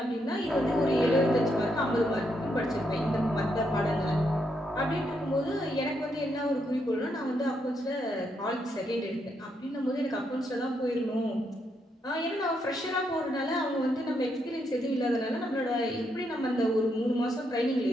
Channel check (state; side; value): normal; both; correlation 0.78